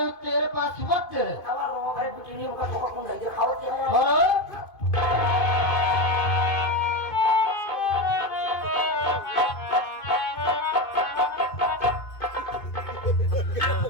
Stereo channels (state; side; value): late; right; 2.5 ms